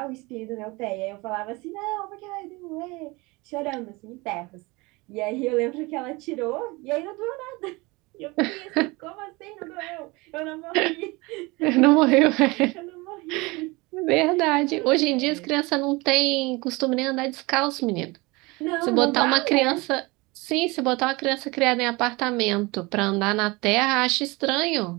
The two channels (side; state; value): left; quieter; 24.3 dB